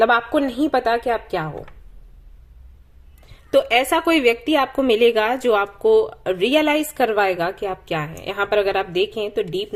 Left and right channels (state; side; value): identical; both; correlation 1.00